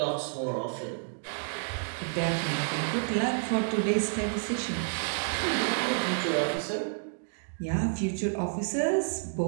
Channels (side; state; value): left; silent; digital silence